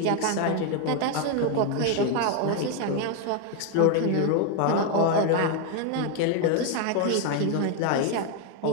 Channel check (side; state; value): both; different; correlation 0.01